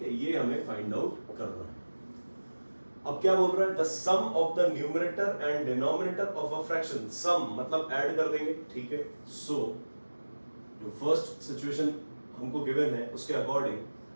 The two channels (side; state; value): both; inverted; correlation -1.00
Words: है, ये हमें फाइंड आउट करना है। अब क्या बोल रहा है, the sum of the numerator and denominator of a fraction. Sum मतलब ऐड कर देंगे, ठीक है। सो जो फर्स्ट सिचुएशन हमको गिवन है उसके according